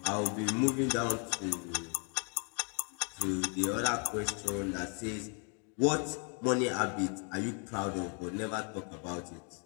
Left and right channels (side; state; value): right; quieter; 38.1 dB